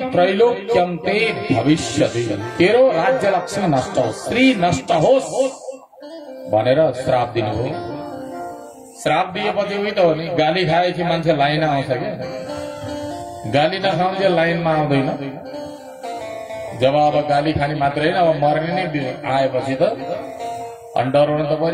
त्रैलोक्यम ते भविष्यति। तेरो राज्य लक्ष्मी नष्ट होस्, श्री नष्ट होस् भनेर श्राप दिनु हो। श्राप दिएपछि उही त हो नि, गाली खाएपछि मान्छे लाइन आउँछ क्या, गाली नखाउँछ लाइनमा आउँदैन। जब अब गाली खाने मात्रै होइन, अब मर्ने नै आएपछि त डराउनु त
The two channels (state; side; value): identical; both; correlation 1.00